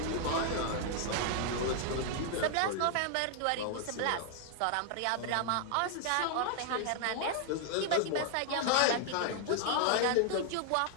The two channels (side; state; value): both; different; correlation 0.00